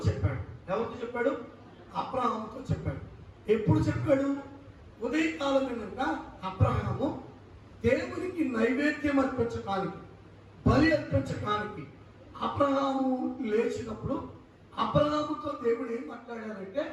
చెప్పాడు. ఎవరితో చెప్పాడు? అబ్రహాముతో చెప్పాడు. ఎప్పుడు చెప్పాడు? ఉదయకాలం కనుక అబ్రహాము దేవునికి నైవేద్యం అర్పించడానికి, బలి అర్పించడానికి అబ్రహాము లేచినప్పుడు అబ్రహాముతో దేవుడు ఏం మాట్లాడారంటే,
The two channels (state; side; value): identical; both; correlation 1.00